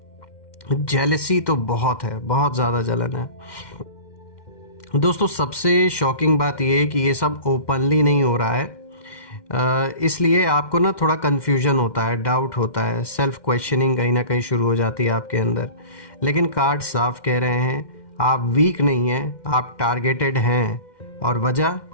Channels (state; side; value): late; right; 2.1 ms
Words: जेलसी तो बहुत है, बहुत ज़्यादा जलन है दोस्तों। सबसे शॉकिंग बात ये है कि ये सब ओपनली नहीं हो रहा है, इसलिए आपको ना थोड़ा कन्फ्यूजन होता है, डाउट होता है, सेल्फ क्वेश्चनिंग कहीं ना कहीं शुरू हो जाती है आपके अंदर। लेकिन कार्ड साफ कह रहे हैं आप वीक नहीं हैं, आप टारगेटेड हैं। और